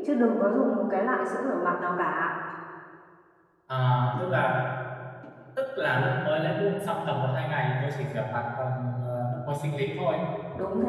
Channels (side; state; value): both; identical; correlation 1.00